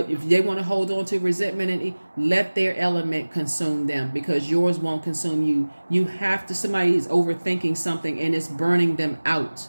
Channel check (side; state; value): both; inverted; correlation -1.00